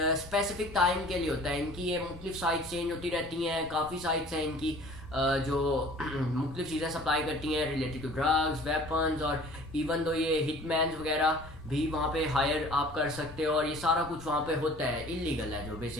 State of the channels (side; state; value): left; noise; rumble, 18 dB below the sound